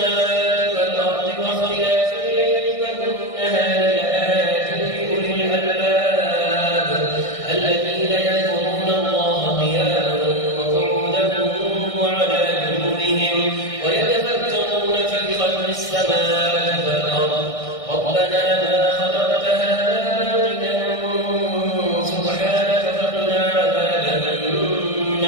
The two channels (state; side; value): late; right; 1.6 ms